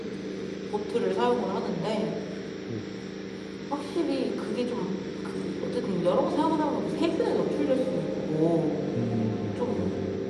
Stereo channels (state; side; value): identical; both; correlation 1.00